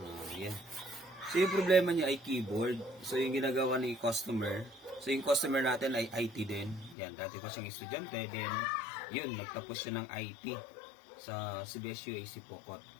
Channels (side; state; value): right; drops out; at 7.0 s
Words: Yan. So yung problema niya ay keyboard. So yung ginagawa ni customer, so yung customer natin ay IT din. Yan, dati pa siyang estudyante. Then, yun, nagtapos siya ng IT sa CBS UAC Pocot.